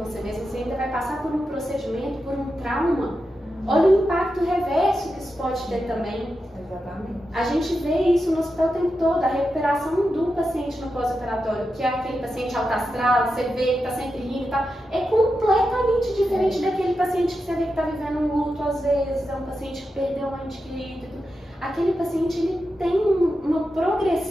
você mesmo, você ainda vai passar por um procedimento, por um trauma. Olha o impacto reverso que isso pode ter também. Exatamente. A gente vê isso no hospital o tempo todo, a recuperação do paciente no pós-operatório, que é aquele paciente alto astral, você vê que está sempre rindo e tal, é completamente diferente daquele paciente que você vê que está vivendo um luto às vezes, é um paciente que perdeu um ente querido. Aquele paciente, ele tem uma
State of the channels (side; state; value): both; normal; correlation 0.89